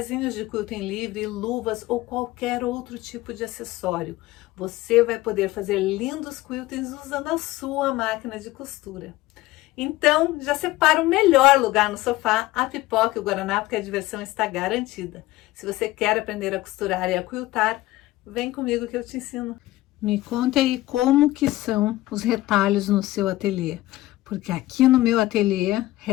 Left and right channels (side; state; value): right; quieter; 17.5 dB